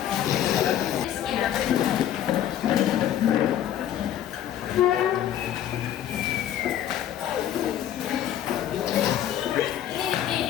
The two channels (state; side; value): quieter; right; 11.1 dB